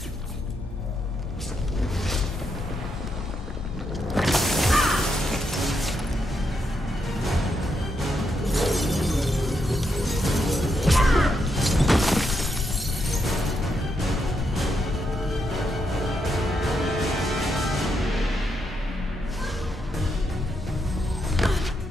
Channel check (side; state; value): both; normal; correlation 0.80